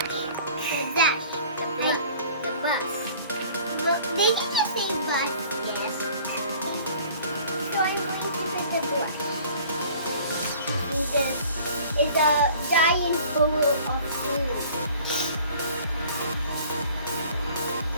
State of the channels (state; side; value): inverted; both; correlation -0.50